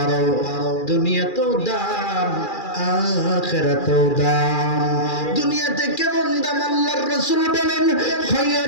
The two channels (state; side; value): late; right; 2.4 ms